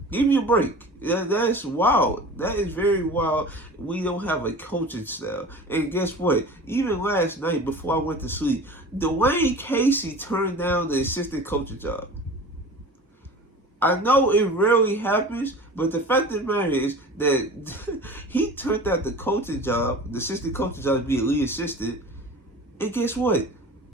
Give me a break. That's wild. That is very wild. We don't have a coaching style. And guess what? Even last night before I went to sleep, Dwayne Casey turned down the assistant coaching job. I know it rarely happens, but the fact of the matter is that he turned out the coaching job, the assistant coaching job, to be a lead assistant. And guess what?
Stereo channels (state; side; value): normal; both; correlation 0.38